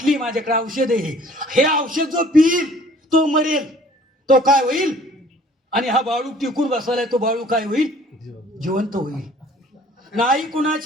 माझ्याकडे औषध आहे, हे औषध जो पिईल तो मरेल, तो काय होईल. आणि हा बाळू टिकून बसलाय, तो बाळू काय होईल, जिवंत होईल. नाही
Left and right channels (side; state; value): both; normal; correlation 0.53